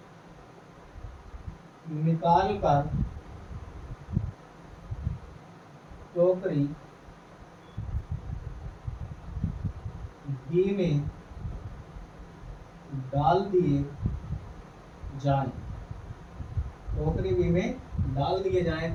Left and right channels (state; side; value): identical; both; correlation 1.00